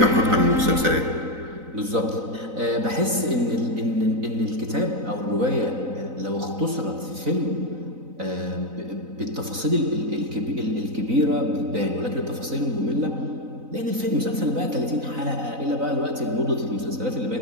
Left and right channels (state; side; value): late; left; 3.9 ms